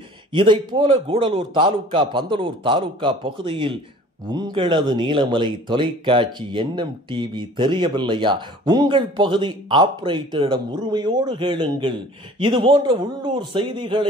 இதைப்போல கூடலூர் தாலுகா பந்தலூர் தாலுகா பகுதியில் உங்களது நீலமலை தொலைக்காட்சி NMTV தெரியவில்லையா? உங்கள் பகுதி ஆபரேட்டரிடம் உரிமையோடு கேளுங்கள். இதுபோன்ற உள்ளூர்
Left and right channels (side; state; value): both; normal; correlation 0.48